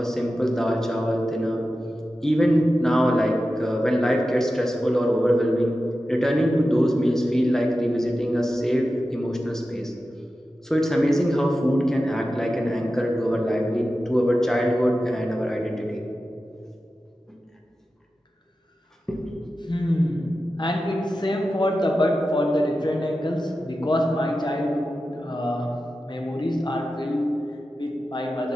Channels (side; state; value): both; normal; correlation 0.92